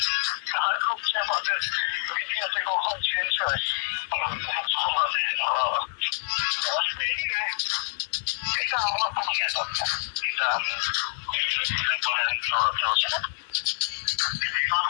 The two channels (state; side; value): silent; right; digital silence